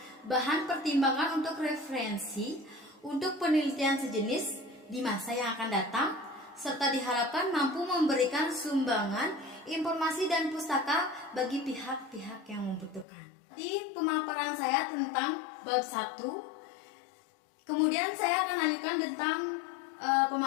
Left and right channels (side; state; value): right; drops out; at 13.1 s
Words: bahan pertimbangan untuk referensi untuk penelitian sejenis di masa yang akan datang, serta diharapkan mampu memberikan sumbangan, informasi, dan pustaka bagi pihak-pihak yang membutuhkan. Di pemaparan saya tentang bab 1, kemudian saya akan lanjutkan tentang